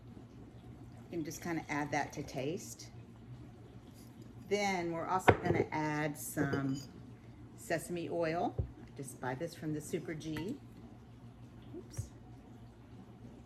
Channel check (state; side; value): identical; both; correlation 1.00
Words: You can just kind of add that to taste. Then we're also gonna add some sesame oil. I just buy this from the Super G. Oops.